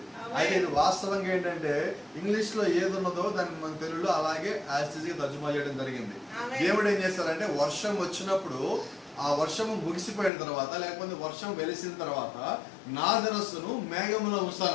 అయితే ఇది వాస్తవంగా ఏంటంటే ఇంగ్లీష్ లో ఏది ఉన్నదో దాన్ని మన తెలుగులో అలాగే యాస్టిజ్ గా తర్జుమా చేయడం జరిగింది. దేవుడు ఏం చేస్తారంటే వర్షం వచ్చినప్పుడు ఆ వర్షము ముగిసిపోయిన తర్వాత లేకపోతే వర్షం వెలిసిన తర్వాత నా ధనస్సును మేఘములో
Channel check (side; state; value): right; drops out; at 10.3 s